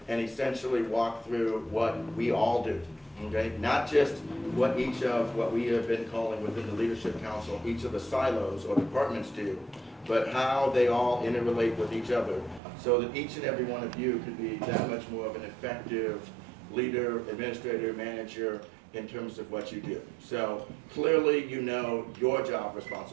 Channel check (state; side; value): drops out; left; at 12.6 s